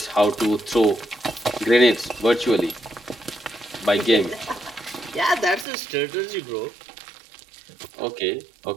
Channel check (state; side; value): drops out; left; at 5.7 s